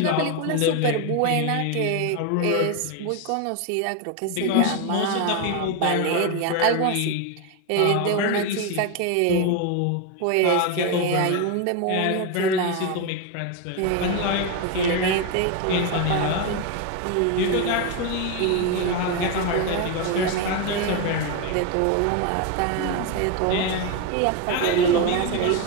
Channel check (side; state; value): both; different; correlation 0.02